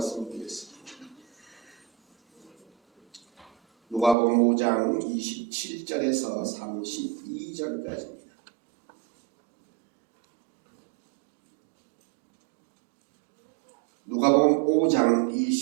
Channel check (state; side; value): drops out; left; at 4.2 s